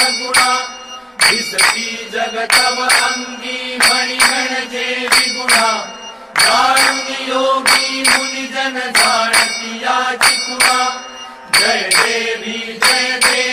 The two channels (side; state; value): both; identical; correlation 1.00